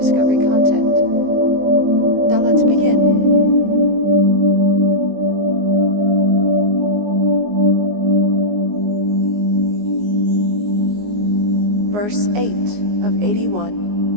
content. Now let's begin. Verse 8 of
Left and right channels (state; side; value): late; left; 19 ms